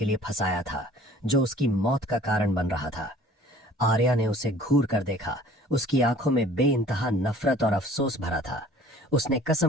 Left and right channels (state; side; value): normal; both; correlation 0.51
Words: लिए फंसाया था, जो उसकी मौत का कारण बन रहा था। आर्या ने उसे घूर कर देखा। उसकी आंखों में बेइंतहा नफरत और अफसोस भरा था। उसने